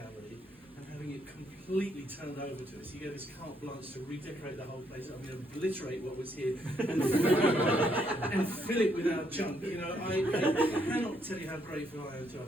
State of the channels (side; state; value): both; normal; correlation 0.73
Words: and having it completely turned over to us. He gave us carte blanche to redecorate the whole place. I'm going to obliterate what was here and fill it with our junk. You know, I cannot tell you how grateful I am to